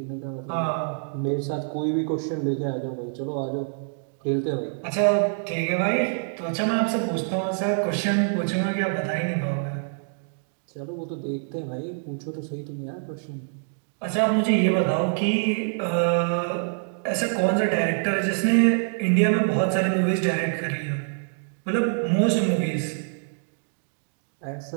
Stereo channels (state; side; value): silent; left; digital silence